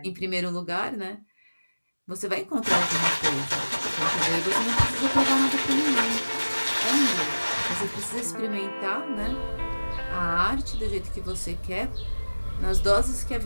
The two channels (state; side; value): inverted; both; correlation -1.00